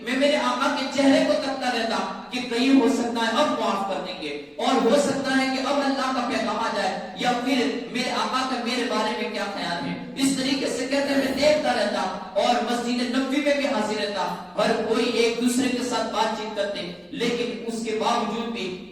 میں میرے آقا کے چہرے کو تکتا رہتا کہ کہیں ہو سکتا ہے اب معاف کر دیں گے اور ہو سکتا ہے کہ اب اللہ کا پیغام آ جائے یا پھر میرے آقا کا میرے بارے میں کیا خیال ہے۔ اس طریقے سے کہتے ہیں میں دیکھتا رہتا اور مسجد نبوی میں بھی حاضر رہتا، ہر کوئی ایک دوسرے کے ساتھ بات چیت کرتے، لیکن اس کے باوجود بھی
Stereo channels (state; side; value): identical; both; correlation 1.00